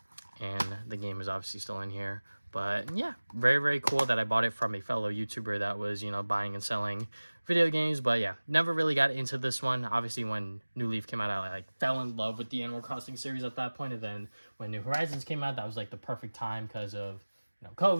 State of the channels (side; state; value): both; inverted; correlation -1.00